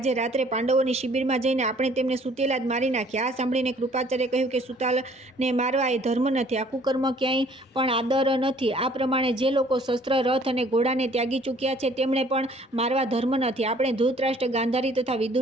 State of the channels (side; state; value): both; normal; correlation 0.57